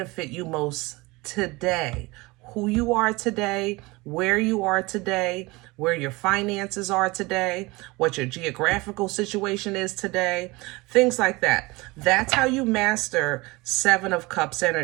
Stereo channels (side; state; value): left; quieter; 23.2 dB